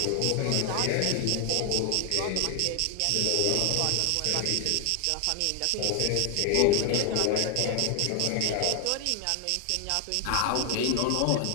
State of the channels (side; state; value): both; different; correlation 0.00